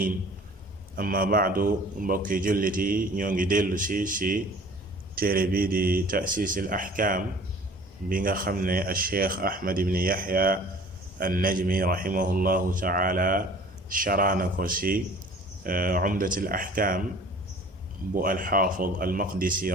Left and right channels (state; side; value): normal; both; correlation 0.48